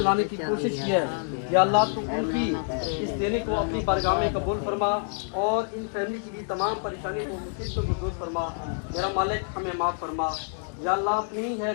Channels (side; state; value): right; silent; 60 dB below the other